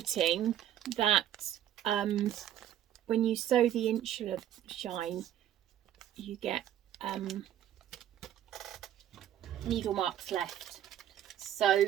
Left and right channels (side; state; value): left; quieter; 11.2 dB